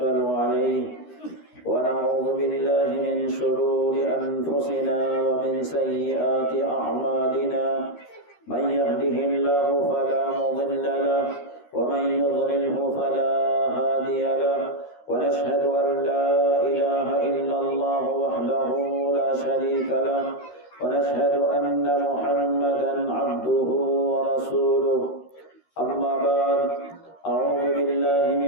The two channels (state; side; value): late; right; 13 ms